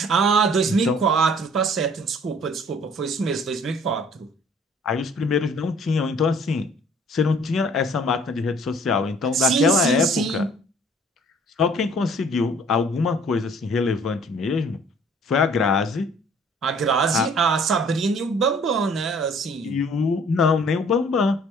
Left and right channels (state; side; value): normal; both; correlation 0.55